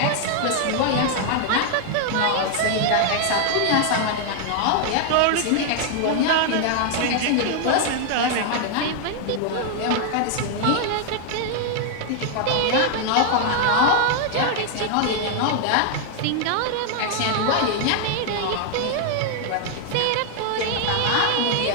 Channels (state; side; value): different; both; correlation 0.00